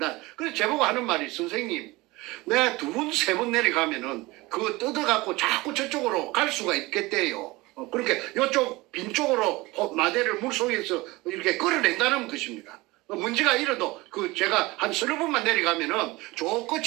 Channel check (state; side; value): quieter; left; 21.6 dB